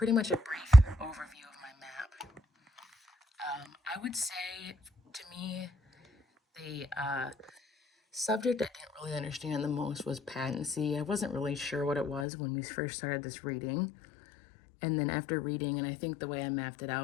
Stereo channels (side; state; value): right; drops out; at 12.2 s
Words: much a brief overview of my map. I would say, to me, the subject I didn't really understand the most was patency. I wasn't really sure what it was when we first started this reading. And then after reading, and I think the way I mapped it